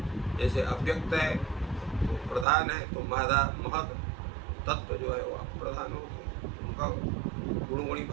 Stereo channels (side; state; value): left; drops out; at 2.5 s